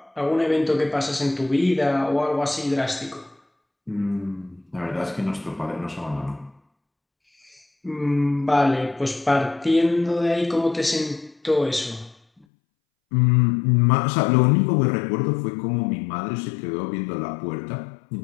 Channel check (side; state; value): right; drops out; at 12.5 s